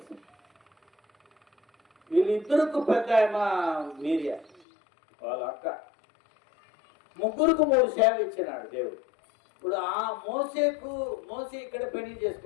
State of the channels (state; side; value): drops out; right; at 4.6 s